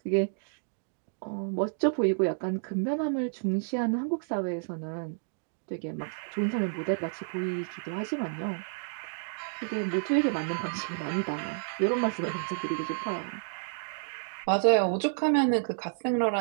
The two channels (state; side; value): silent; left; digital silence